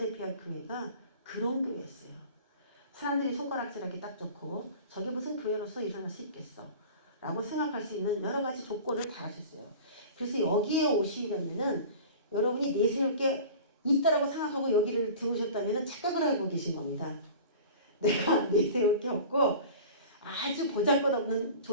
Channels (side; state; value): both; inverted; correlation -0.39